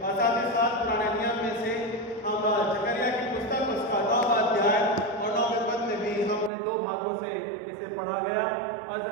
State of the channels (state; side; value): drops out; left; at 6.5 s